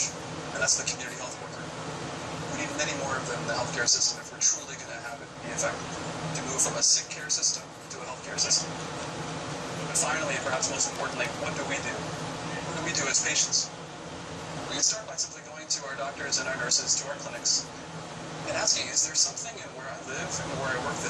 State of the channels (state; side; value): identical; both; correlation 1.00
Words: and that's the community health worker. We need many more of them in the healthcare system if we're truly going to have it be effective, to move from a sick care system to a healthcare system. But finally, and perhaps most importantly, what do we do? What do we do as patients? We can start by simply going to our doctors and our nurses, to our clinics, and asking, is there something in where I live and where I work